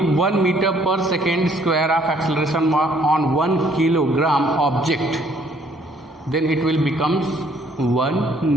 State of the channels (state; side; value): normal; both; correlation 0.63